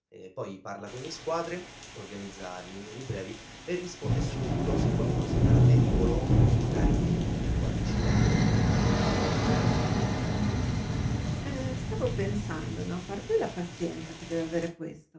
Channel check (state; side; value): identical; both; correlation 1.00